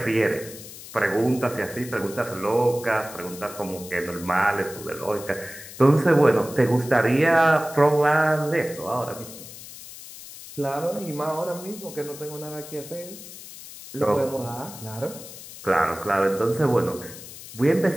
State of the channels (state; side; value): noise; left; hiss, 15 dB below the sound